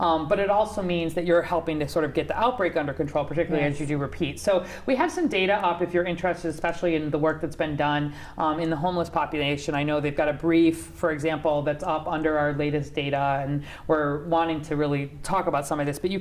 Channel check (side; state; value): both; identical; correlation 1.00